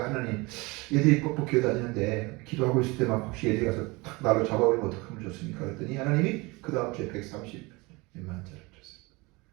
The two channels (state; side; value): quieter; left; 24.8 dB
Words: 하나님 얘들이 뻑뻑 기어다니는데 기도하고 있을 때 막 혹시 얘들이 가서 탁 난로 잡아버리면 어떡하면 좋습니까? 그랬더니 하나님이 그 다음 주에 130 몇만 원짜리